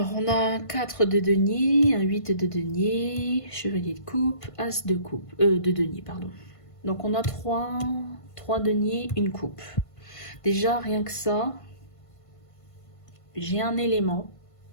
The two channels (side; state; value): right; late; 1.5 ms